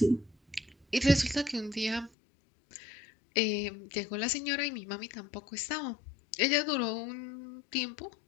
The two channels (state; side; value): drops out; right; at 2.1 s